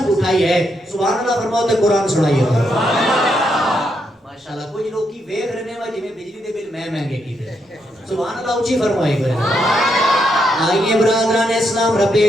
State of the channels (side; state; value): both; normal; correlation 0.79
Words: اٹھائی ہے؟ سبحان اللہ فرماؤ تے قرآن سنائیے. ماشاءاللہ کچھ لوگ کی ویکھ رہنے وا جویں بجلی دے بل میں مہنگے کیتے. سبحان اللہ اونچی فرمائی کرے. آئیے برادران اسلام, رب